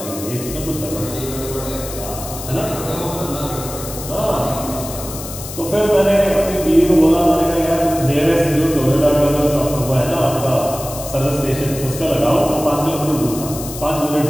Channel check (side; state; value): left; noise; hiss, 11 dB below the sound